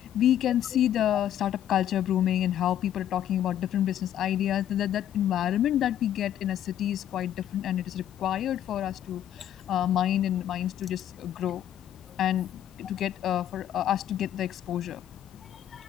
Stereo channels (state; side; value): quieter; right; 11.0 dB